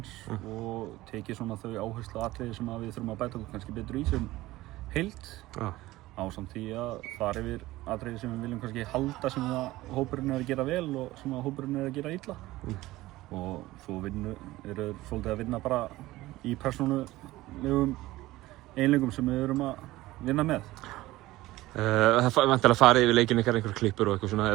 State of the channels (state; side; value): quieter; left; 17.6 dB